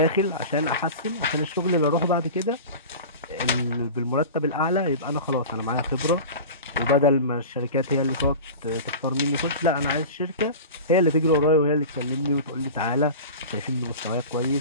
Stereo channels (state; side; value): inverted; both; correlation -0.33